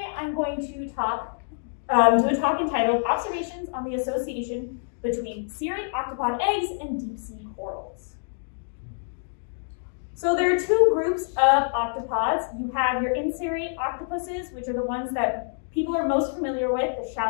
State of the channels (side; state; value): right; silent; digital silence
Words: I'm going to do a talk entitled Observations on the Association Between Cirrate Octopod Eggs and Deep Sea Corals. So there are two groups of octopods. You have your in-cirrate octopuses, which are the ones that people are most familiar with, the